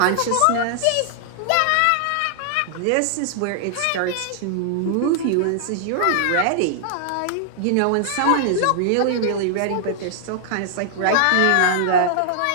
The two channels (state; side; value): different; both; correlation -0.01